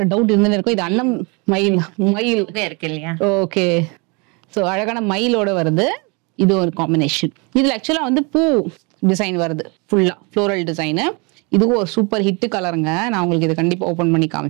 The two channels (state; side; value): quieter; left; 30.6 dB